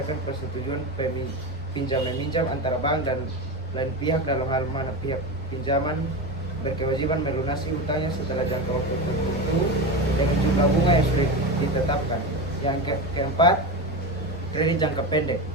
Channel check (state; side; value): normal; both; correlation 0.21